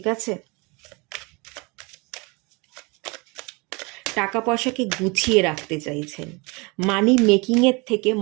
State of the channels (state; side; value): quieter; left; 28.0 dB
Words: আছে? টাকা পয়সাকে গুছিয়ে রাখতে চাইছেন, মানি মেকিংয়ের থেকে